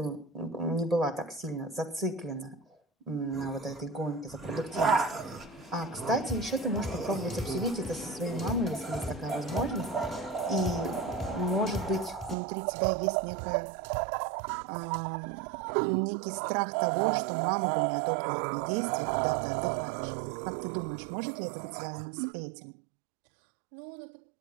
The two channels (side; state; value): left; drops out; at 12.4 s